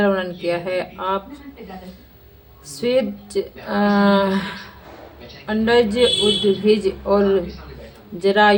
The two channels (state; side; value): identical; both; correlation 1.00